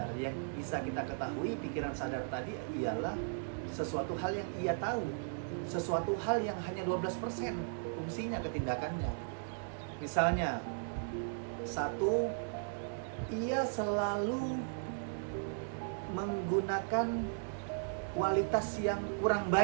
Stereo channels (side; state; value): left; silent; digital silence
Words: Yang bisa kita ketahui, pikiran sadar tadi ialah sesuatu hal yang ia tahu, sesuatu hal yang hanya 12% fungsinya ketindakannya. Misalnya, satu, ia selalu menggunakan kualitas yang kurang